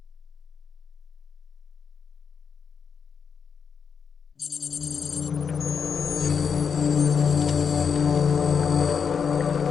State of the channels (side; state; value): right; quieter; 6.5 dB